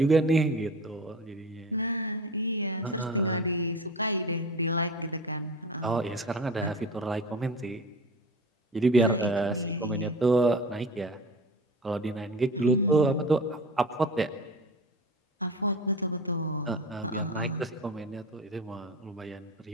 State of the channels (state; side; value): normal; both; correlation 0.34